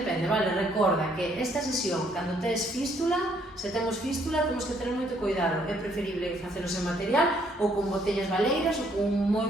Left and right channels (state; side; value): normal; both; correlation 0.68